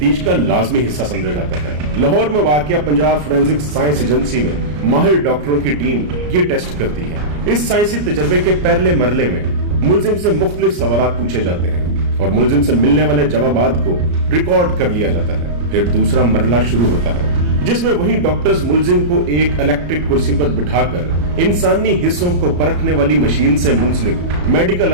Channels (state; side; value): late; left; 34 ms